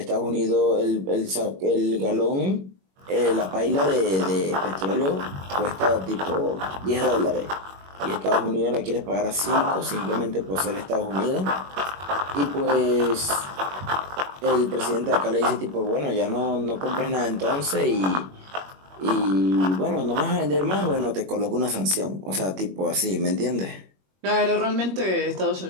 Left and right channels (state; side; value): late; left; 21 ms